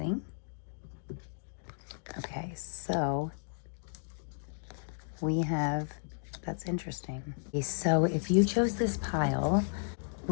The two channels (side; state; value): right; silent; digital silence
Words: Okay, so we have, that's interesting. Okay, so if you chose this pile,